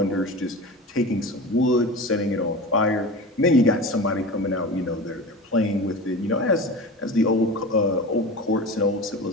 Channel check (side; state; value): both; normal; correlation 0.31